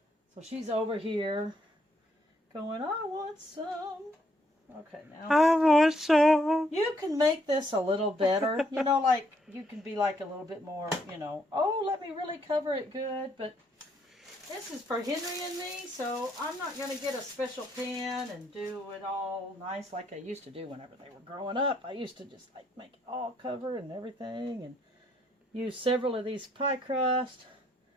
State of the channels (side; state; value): both; normal; correlation 0.71